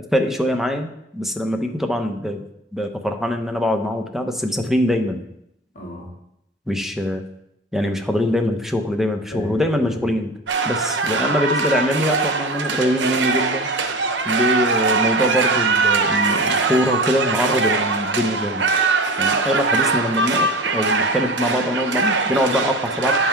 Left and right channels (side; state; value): both; normal; correlation 0.35